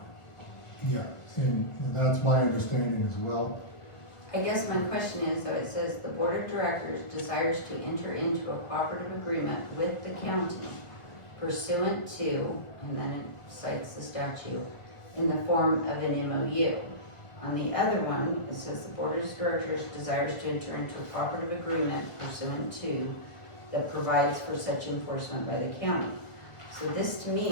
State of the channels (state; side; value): late; right; 1.4 ms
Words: Yeah, and that's my understanding as well. I guess my question is, though, it says the board of directors desires to enter into a cooperative agreement with the county pursuant to, and then it cites the statute, in the form of an MOU. On the other one, it says the board of directors desires to enter into a cooperative agreement pursuant to, that provides for such enforcement by the county. So this to me